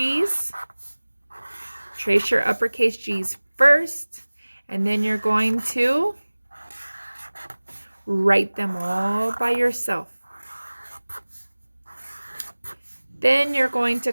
Trace your uppercase G's first, and then you're going to write them all by yourself. Then you're going to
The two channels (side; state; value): both; inverted; correlation -1.00